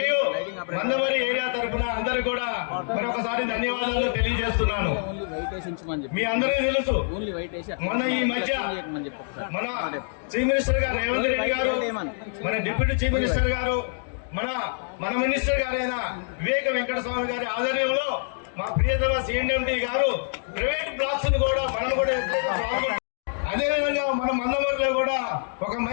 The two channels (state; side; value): silent; right; digital silence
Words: మందమరి ఏరియా తరపున అందరు కూడా మరొకసారి ధన్యవాదాలు తెలియజేస్తున్నాను. మీ అందరికీ తెలుసు, మొన్న ఈ మధ్య మన చీఫ్ మినిస్టర్ గారు రేవంత్ రెడ్డి గారు, మన డిప్యూటీ చీఫ్ మినిస్టర్ గారు, మన మినిస్టర్ గారైన వివేక వెంకటస్వామి గారి ఆధ్వర్యంలో మా ప్రియతమ సిఎండి గారు ప్రైవేట్ బ్లాక్స్ ను కూడా మనం కూడా అదేవిధంగా మన మందమరిలో కూడా ఒక